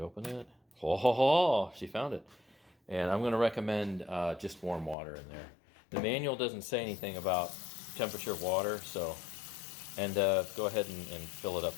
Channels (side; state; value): right; drops out; at 5.0 s